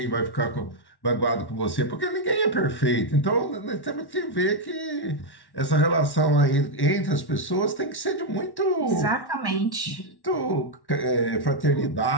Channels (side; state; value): right; late; 1.1 ms